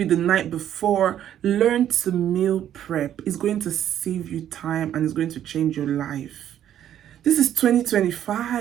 the night before. Learn to meal prep. It's going to save you time and it's going to change your life. This is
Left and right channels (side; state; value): left; quieter; 10.7 dB